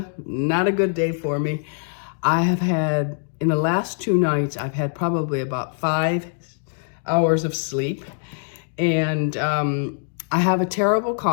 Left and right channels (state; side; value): silent; right; digital silence